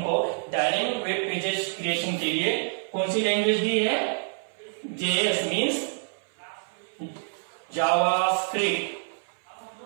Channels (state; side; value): silent; left; 58 dB below the other